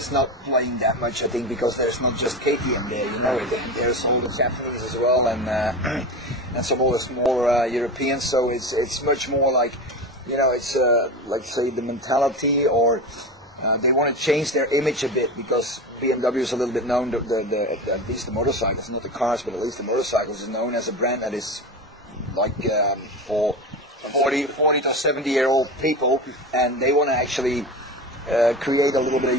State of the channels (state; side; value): normal; both; correlation 0.25